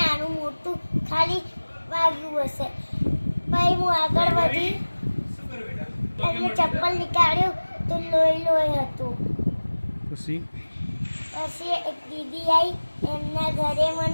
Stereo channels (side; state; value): both; inverted; correlation -1.00